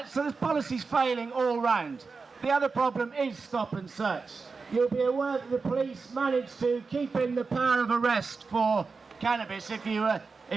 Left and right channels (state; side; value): quieter; left; 4.5 dB